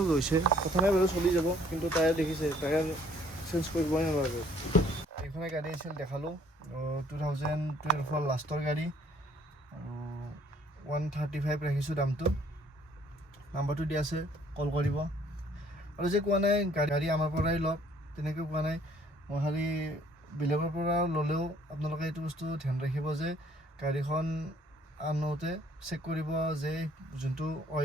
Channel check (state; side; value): normal; both; correlation 0.60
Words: গৈছে, কথা নাই বাৰু, চলি যাব। কিন্তু টায়াৰ দেখিছে, টায়াৰ চেঞ্জ কৰিবই নালাগে। এইখনে গাড়ী আছিল, দেখালোঁ 2012 লাষ্টৰ গাড়ী, আৰু 135 ৰাখিছোঁ দামটো। নাম্বাৰটো দিয়া আছে, কল কৰিব। আৰু যে কোৱা নাই গাড়ী আমাৰ পৰাই লওক, তেনেকৈ কোৱা নাই। মই খালি বেলেগৰ পৰা ল'লেও আপোনালোকে এইটো বস্তু ধ্যান ৰাখিব যে গাড়ীখন আনোতে চেক কৰিব যে যোনটো